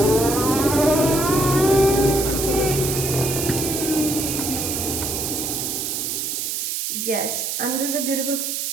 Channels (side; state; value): right; noise; hiss, 2 dB below the sound